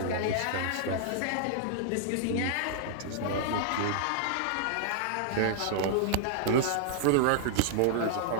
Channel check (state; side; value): different; both; correlation 0.00